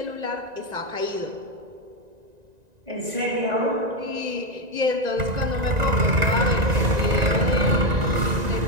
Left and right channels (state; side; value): late; left; 1.9 ms